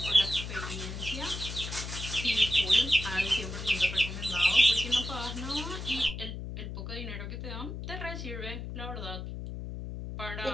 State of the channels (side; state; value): left; noise; hum, 7 dB below the sound